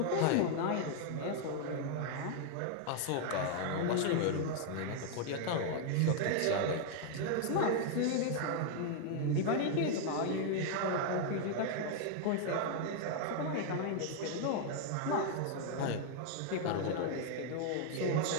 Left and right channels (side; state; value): both; different; correlation 0.00